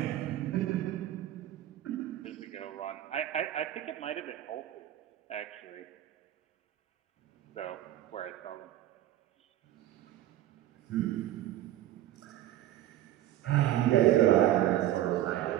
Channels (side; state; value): left; quieter; 13.2 dB